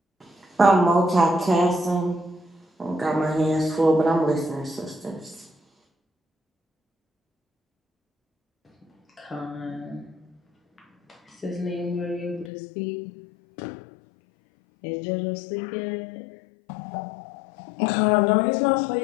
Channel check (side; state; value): right; drops out; at 12.5 s